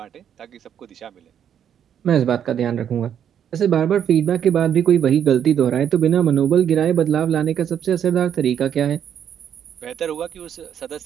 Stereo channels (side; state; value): left; quieter; 9.1 dB